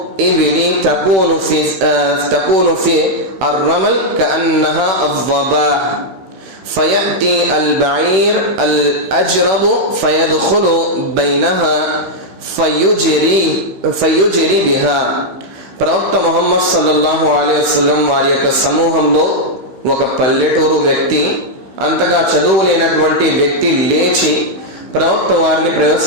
ఇబ్ని తకూను ఫి అర్రమల్ కఅన్నహా అవ్వబాహ్ ఫయأتي البعير الأجرب فيدخل بينها ఫయుజిరి బిహా. ప్రవక్త ముహమ్మద్ సల్లల్లాహు అలైహి వసల్లం వారి యొక్క సమూహంలో ఒక పల్లెటూరు వ్యక్తి, అంతగా చదువు లేనటువంటి వ్యక్తి లేచి ప్రవక్త వారిని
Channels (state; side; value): late; left; 16 ms